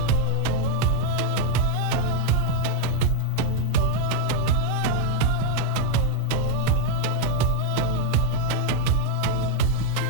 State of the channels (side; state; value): both; different; correlation 0.01